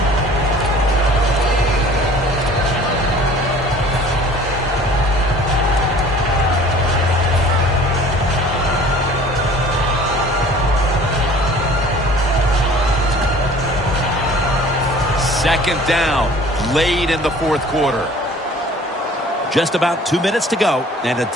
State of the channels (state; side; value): normal; both; correlation 0.49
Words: Second down, late in the fourth quarter. Just about 2 minutes to go, and the